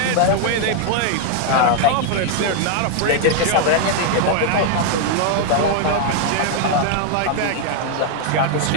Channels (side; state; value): both; different; correlation 0.00